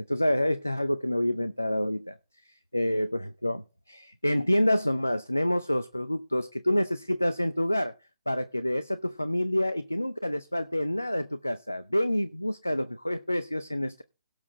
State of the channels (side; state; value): both; inverted; correlation -0.98